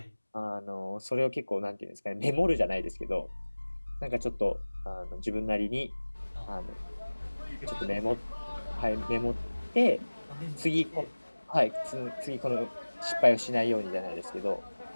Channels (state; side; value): inverted; both; correlation -1.00